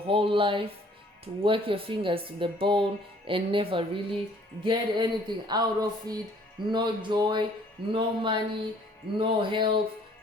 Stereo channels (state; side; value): normal; both; correlation 0.58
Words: whole life, to work your fingers to the bone and never really get anything out of it. No joy, no money, no health.